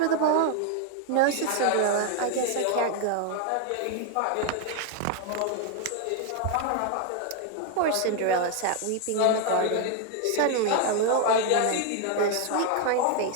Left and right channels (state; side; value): different; both; correlation 0.01